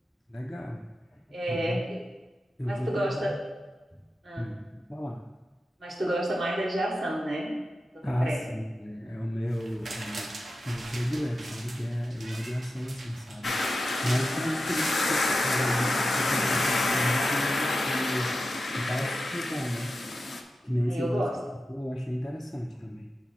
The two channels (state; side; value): normal; both; correlation 0.92